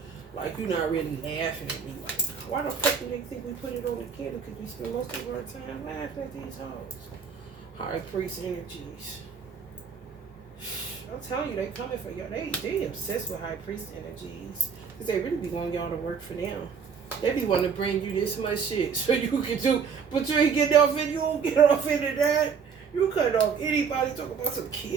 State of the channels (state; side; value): quieter; left; 6.3 dB